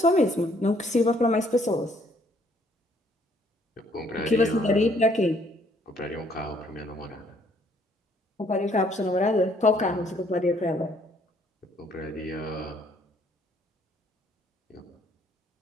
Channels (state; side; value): normal; both; correlation 0.65